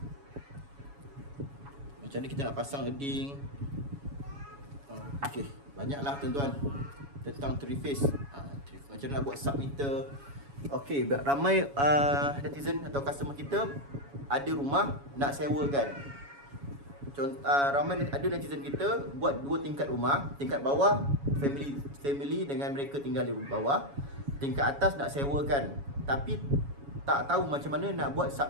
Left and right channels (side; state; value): left; late; 7.2 ms